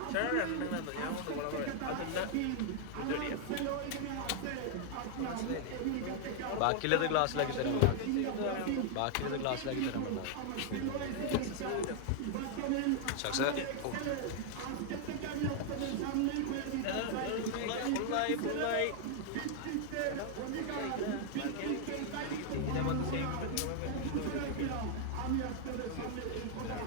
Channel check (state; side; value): different; both; correlation 0.00